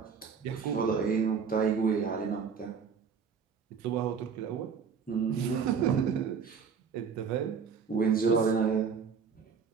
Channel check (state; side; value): quieter; left; 6.1 dB